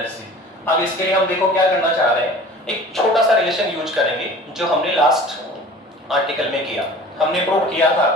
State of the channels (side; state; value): both; normal; correlation 0.43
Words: अब इसके लिए हम देखो क्या करना चाह रहे हैं, एक छोटा सा रिलेशन यूज करेंगे जो हमने लास्ट आर्टिकल में किया। हमने प्रूव किया था